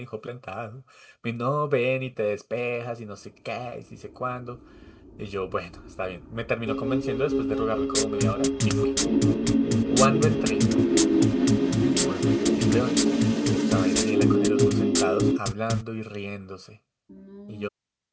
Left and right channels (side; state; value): both; identical; correlation 1.00